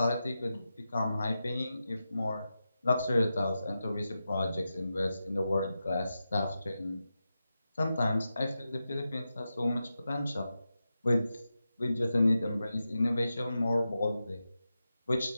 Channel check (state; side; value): inverted; both; correlation -0.90